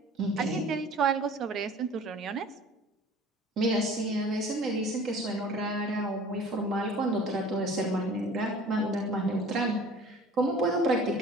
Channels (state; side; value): normal; both; correlation 0.46